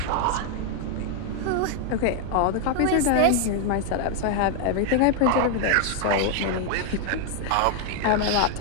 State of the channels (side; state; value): both; different; correlation 0.00